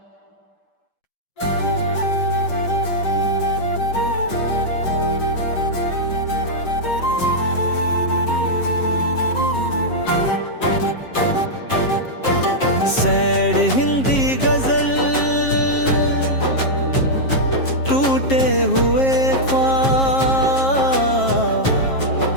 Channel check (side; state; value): right; late; 7.5 ms